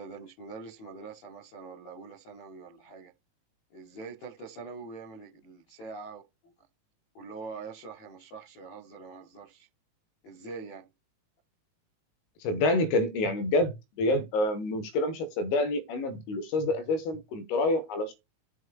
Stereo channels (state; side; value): late; right; 19 ms